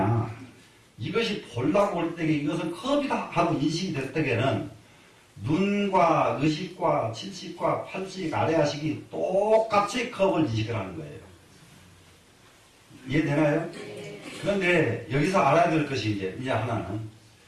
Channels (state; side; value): identical; both; correlation 1.00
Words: 이것이 보려고 올 때에 이것은 컵이다 하고 인식이 될 때에는 눈과 의식과 칠식과 팔식, 아래야식이 똑같이 컵을 인식을 하는 거예요. 이해되나요? 그런데 여기서 알아야 될 것이 이제 하나는